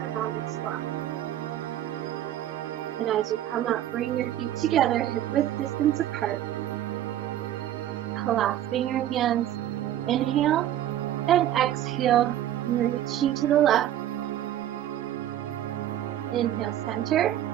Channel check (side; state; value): left; quieter; 12.1 dB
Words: squat. And as you come up, bring your feet together, hip-width distance apart. Clasping your hands, inhale and exhale, reaching to the left. Inhale, center,